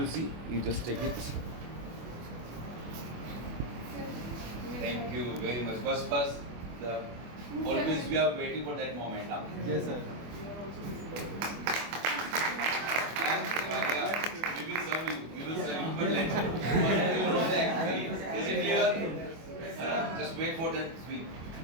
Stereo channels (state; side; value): late; left; 25 ms